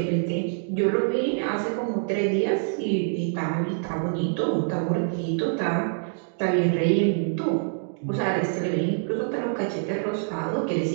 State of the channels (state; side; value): silent; left; digital silence